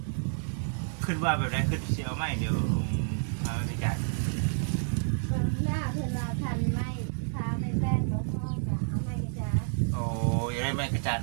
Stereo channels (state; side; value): silent; left; 57 dB below the other